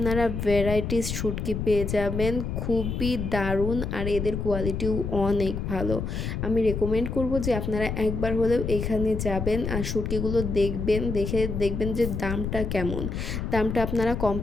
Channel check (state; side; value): noise; left; rumble, 3 dB below the sound